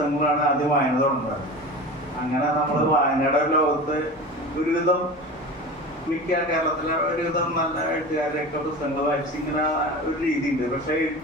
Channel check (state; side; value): normal; both; correlation 0.32